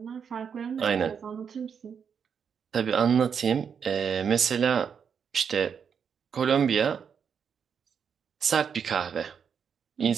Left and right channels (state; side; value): quieter; left; 7.0 dB